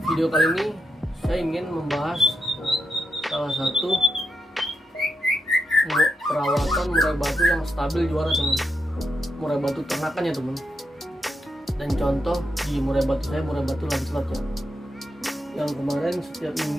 video kali ini saya ingin membahas salah satu perawatan murai batu yang stabil juara teman. Murai batu ternakan ya teman. Dan contoh di murai batu saya, murai batu Lancelot ya, yang kemarin setiap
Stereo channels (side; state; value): both; normal; correlation 0.84